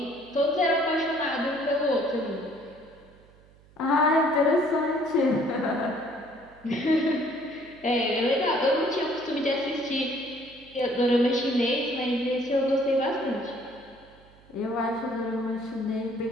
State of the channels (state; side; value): noise; right; hum, 27 dB below the sound